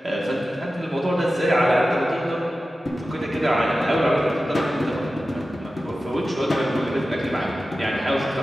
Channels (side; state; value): both; normal; correlation 0.94